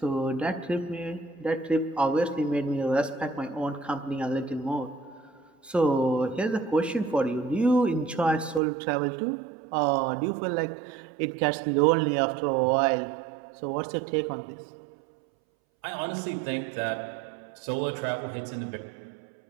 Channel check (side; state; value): left; drops out; at 8.6 s